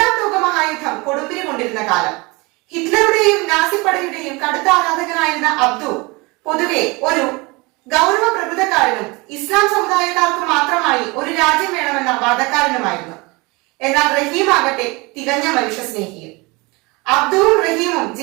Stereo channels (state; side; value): quieter; left; 25.7 dB